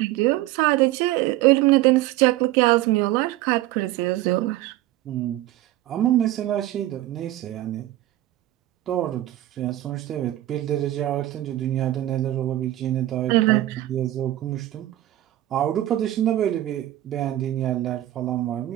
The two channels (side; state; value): left; quieter; 15.0 dB